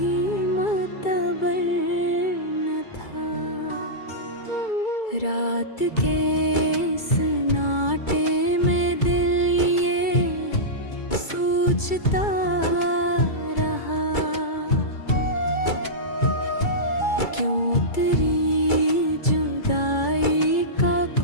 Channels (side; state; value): right; late; 2.3 ms